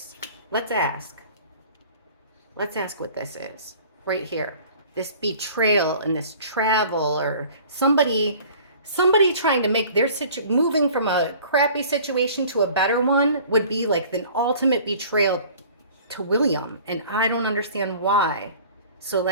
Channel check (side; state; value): both; inverted; correlation -0.48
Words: Let's ask. Let's ask what this is right here. This betrayal and this travel, or somebody trying to make their moving from a crappy situation to a better one would be like the ultimate betrayal to William. And I don't understand why. So